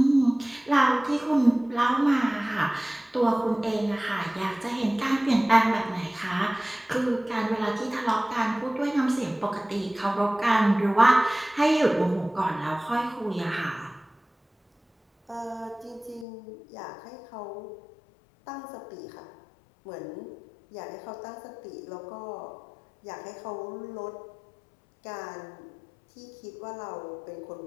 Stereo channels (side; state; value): right; drops out; at 16.2 s